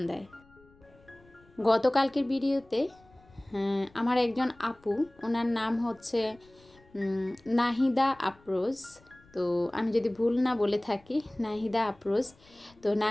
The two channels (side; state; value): left; noise; rumble, 29 dB below the sound